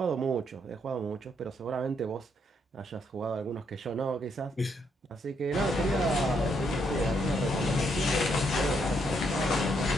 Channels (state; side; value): normal; both; correlation 0.75